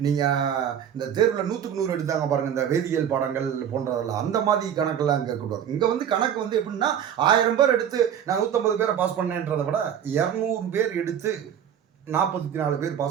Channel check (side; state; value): left; quieter; 9.1 dB